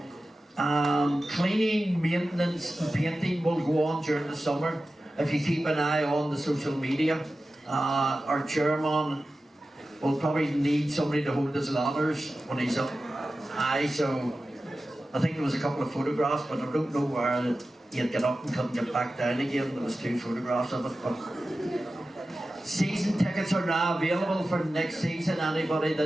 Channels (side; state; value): both; normal; correlation 0.94